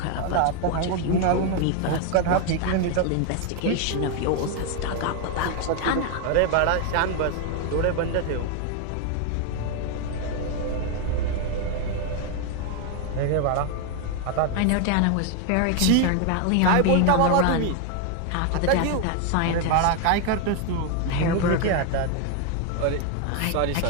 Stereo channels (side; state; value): both; different; correlation 0.01